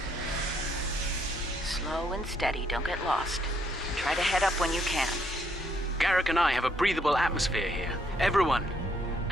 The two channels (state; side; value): normal; both; correlation 0.71